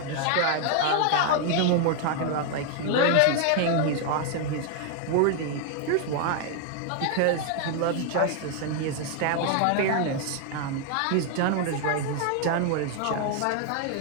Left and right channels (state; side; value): different; both; correlation 0.00